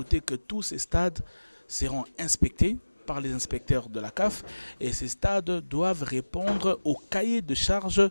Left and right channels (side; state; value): both; inverted; correlation -1.00